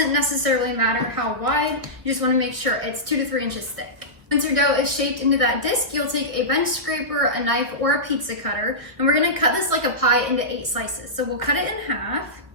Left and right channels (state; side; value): late; left; 1.5 ms